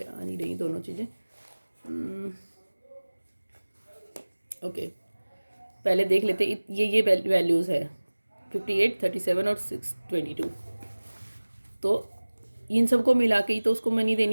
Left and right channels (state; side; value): inverted; both; correlation -1.00